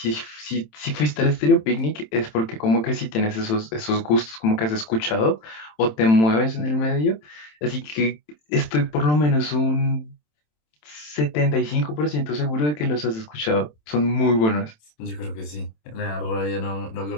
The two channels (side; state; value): right; late; 27 ms